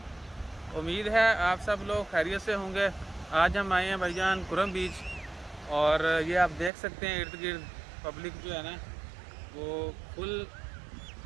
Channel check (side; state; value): left; drops out; at 6.7 s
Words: उम्मीद है आप सब लोग खैरियत से होंगे। आज हम आए हैं भाईजान कुरम बीच, और ये आप देख सकते हैं इर्द गिर्द पब्लिक जो है ना वो फुल